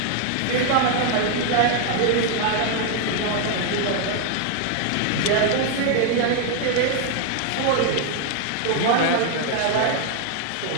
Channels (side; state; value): both; different; correlation 0.00